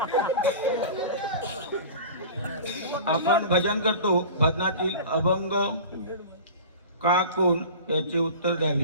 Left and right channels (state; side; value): inverted; both; correlation -0.37